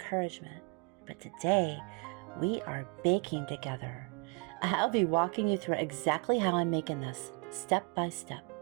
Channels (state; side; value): quieter; left; 33.7 dB